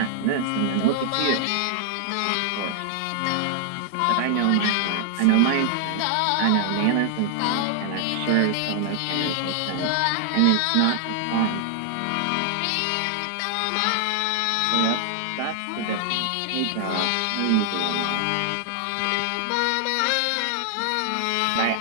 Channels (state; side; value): different; both; correlation 0.00